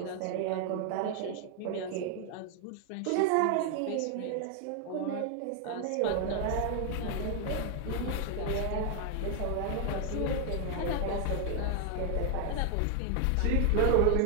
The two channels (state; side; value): different; both; correlation 0.00